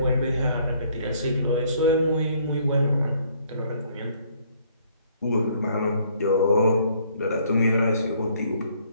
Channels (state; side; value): inverted; both; correlation -0.63